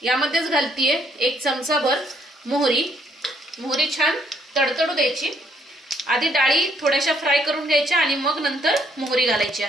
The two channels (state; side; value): normal; both; correlation 0.69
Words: यामध्येच घालतीये 1 चमचा भर मोहरी। मोहरी छान तडतडू द्यायची। आधी डाळी थोड्याशा फ्राय करून घ्यायच्या आणि मग नंतर मोहरी घालायची